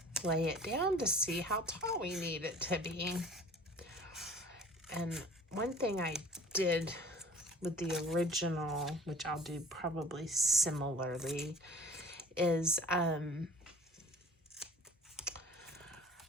lay it down to see how tall we need it to be. And one thing I did with the original, which I'll do probably similarly, is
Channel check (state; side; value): normal; both; correlation 0.46